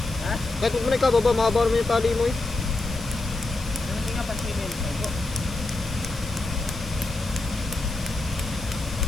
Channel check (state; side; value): quieter; right; 3.0 dB